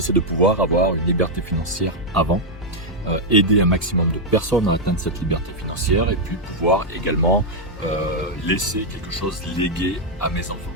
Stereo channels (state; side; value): normal; both; correlation -0.02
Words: c'est de pouvoir avoir une liberté financière avant, aider un maximum de personnes à atteindre cette liberté financière et puis pouvoir également laisser quelque chose légué à mes enfants.